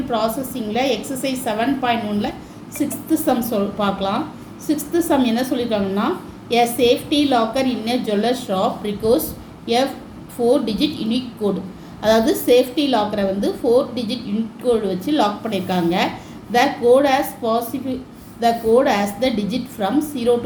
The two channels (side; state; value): both; identical; correlation 1.00